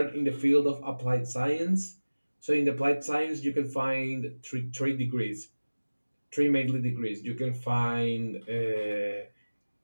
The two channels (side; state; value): both; inverted; correlation -1.00